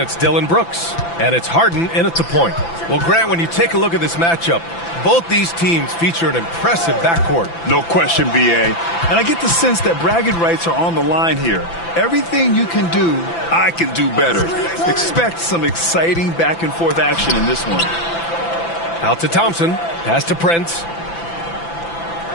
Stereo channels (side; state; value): right; late; 5.9 ms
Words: Dillon Brooks. And it's Harden in at the point. Well, Grant, when you take a look at this matchup, both these teams feature an impressive backcourt. No question, B.A. And I get the sense that bragging rights are on the line here. Everything you can do, I can do better. Expect some exciting back-and-forth action in this one. Out to Thompson. Pass to Prince.